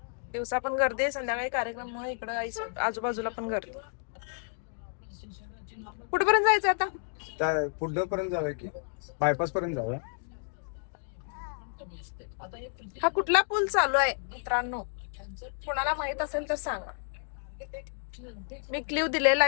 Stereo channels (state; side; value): silent; right; digital silence